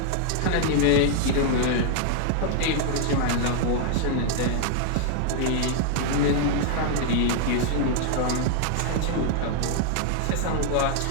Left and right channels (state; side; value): different; both; correlation 0.00